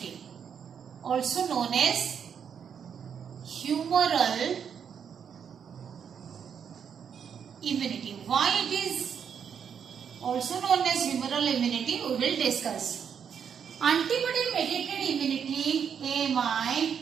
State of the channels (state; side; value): quieter; left; 7.5 dB